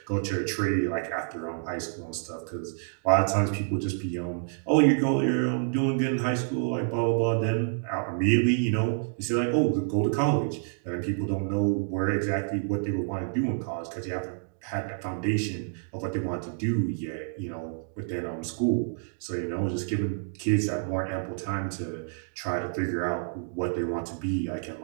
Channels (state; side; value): silent; left; digital silence